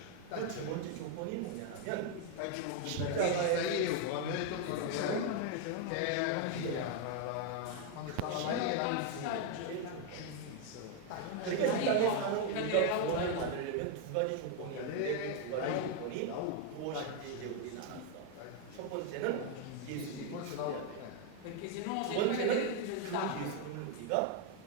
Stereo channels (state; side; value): different; both; correlation 0.01